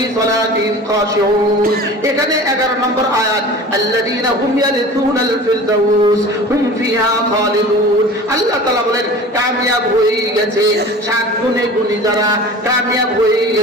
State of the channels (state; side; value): normal; both; correlation 0.39